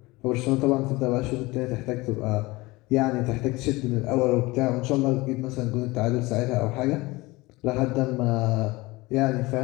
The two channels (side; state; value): right; quieter; 21.8 dB